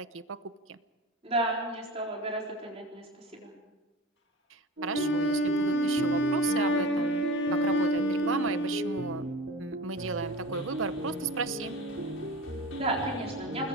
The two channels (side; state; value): both; normal; correlation 0.32